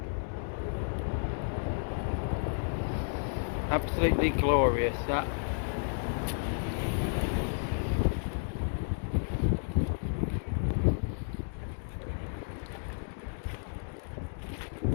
Absolutely glorious, that.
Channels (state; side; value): silent; right; digital silence